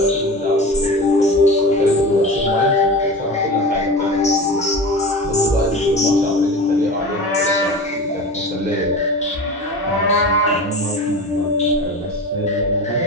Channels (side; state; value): both; normal; correlation 0.31